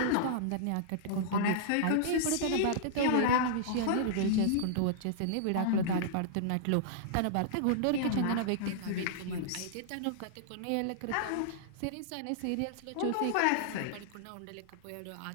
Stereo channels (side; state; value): both; different; correlation -0.02